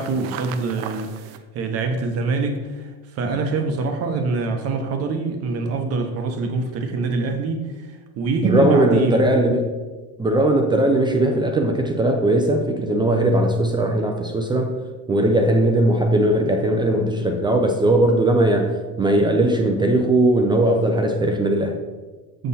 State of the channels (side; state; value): both; normal; correlation 0.50